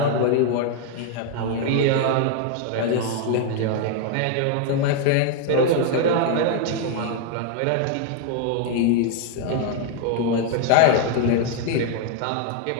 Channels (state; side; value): different; both; correlation 0.00